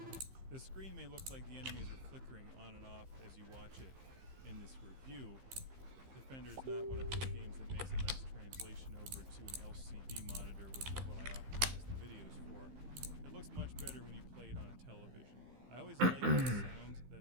The screen may look like the enemies are flickering on and off as you watch it in this review. Defender is not one of those games that makes a nice translation over to an LCD monitor, which is what I optimize the videos for. It looks much better when you play it on a television. I always like the sound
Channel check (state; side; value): late; left; 15 ms